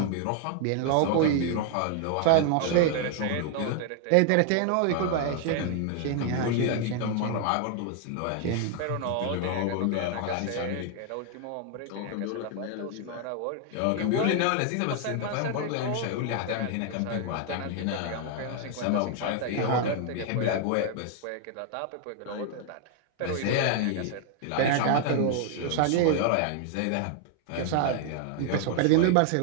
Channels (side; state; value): both; different; correlation 0.00